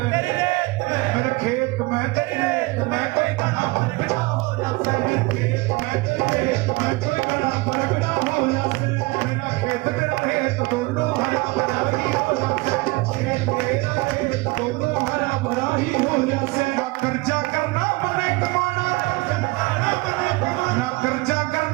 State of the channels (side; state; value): left; quieter; 23.5 dB